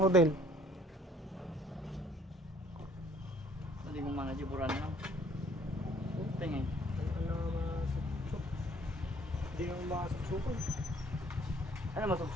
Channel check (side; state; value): both; normal; correlation 0.59